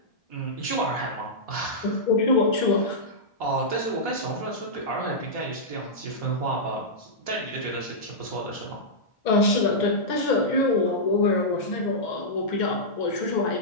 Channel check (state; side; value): late; right; 2.1 ms